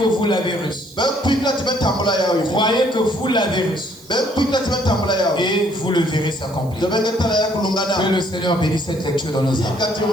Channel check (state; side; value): noise; right; hiss, 24 dB below the sound